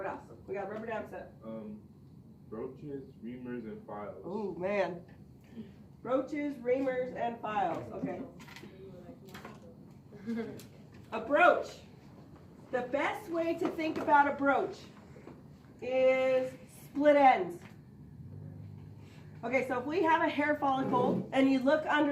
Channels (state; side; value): identical; both; correlation 1.00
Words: else? We got rubber dam set. Brooches, reamers, and files. Oh, man. Brooches, reamers, and files, okay. A brooch. The best way to think about a brooch is split ends. Okay, so if we have a hair follicle and you look